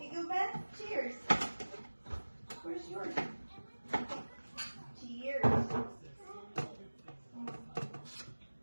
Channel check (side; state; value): both; inverted; correlation -1.00